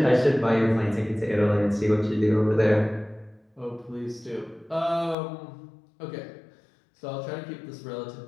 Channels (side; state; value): right; drops out; at 5.2 s